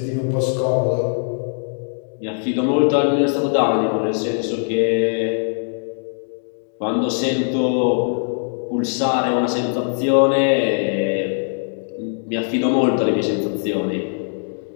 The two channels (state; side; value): silent; right; digital silence